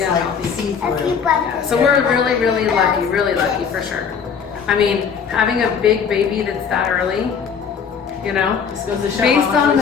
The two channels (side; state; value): right; quieter; 6.6 dB